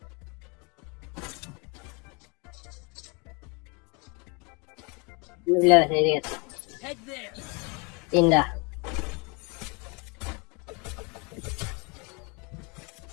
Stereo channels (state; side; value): quieter; right; 31.0 dB